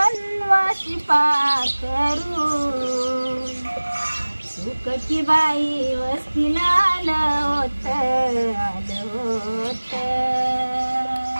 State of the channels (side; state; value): both; inverted; correlation -1.00